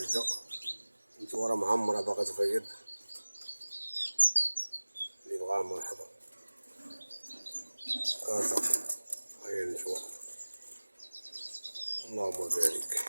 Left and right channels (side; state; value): both; inverted; correlation -1.00